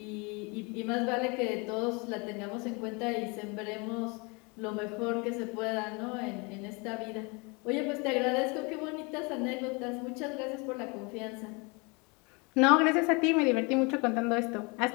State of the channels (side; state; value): right; quieter; 29.7 dB